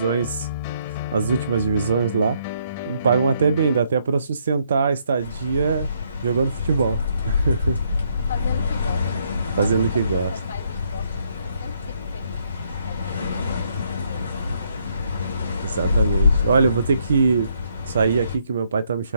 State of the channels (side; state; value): both; inverted; correlation -0.72